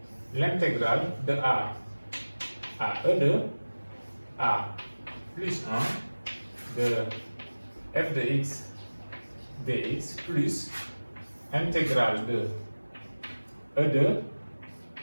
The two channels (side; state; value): both; inverted; correlation -1.00